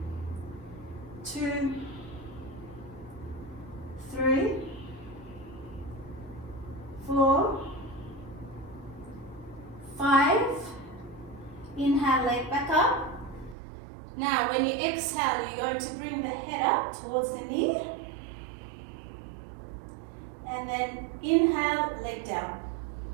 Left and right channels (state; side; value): drops out; left; at 13.6 s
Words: 2, 3, 4, 5. Inhale, leg back up. Now when you exhale, you're going to bring the head up towards the knee. And then inhale, leg down.